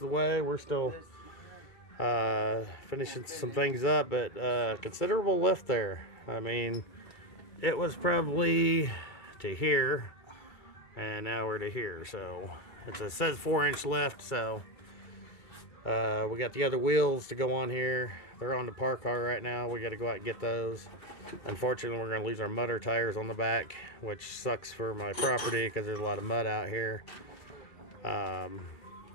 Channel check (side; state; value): right; late; 2.3 ms